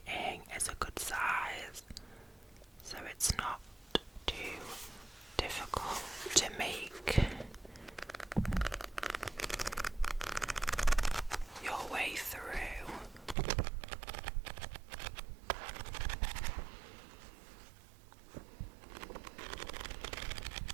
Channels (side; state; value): left; drops out; at 13.4 s